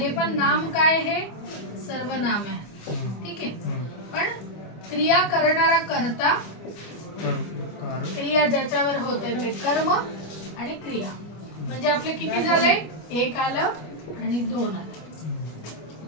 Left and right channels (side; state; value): right; late; 25 ms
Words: पण नाम काय, हे सर्वनाम आहे, ठीक आहे. पण क्रिया करणारा कर्ता, क्रिया ज्याच्यावर होते ते कर्म आणि क्रिया. म्हणजे आपले किती झाले, एक आलं आणि दोन आलं,